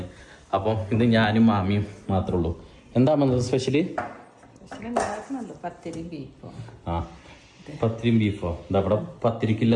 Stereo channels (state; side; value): identical; both; correlation 1.00